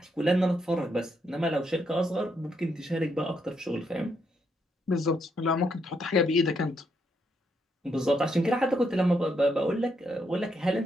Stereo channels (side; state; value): both; normal; correlation 0.77